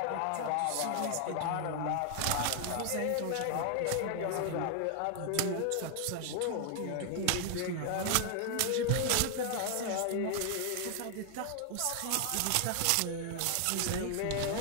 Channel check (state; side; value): different; both; correlation 0.00